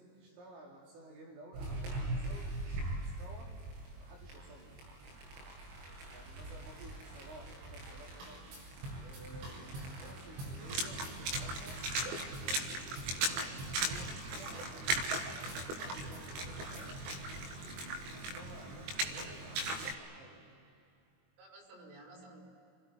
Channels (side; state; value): left; late; 22 ms